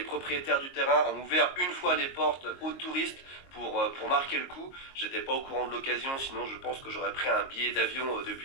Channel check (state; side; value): late; right; 22 ms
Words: propriétaires du terrain ont ouvert une fois les portes aux touristes pour marquer le coup. J'étais pas au courant de l'occasion, sinon je pense que j'aurais pris un billet d'avion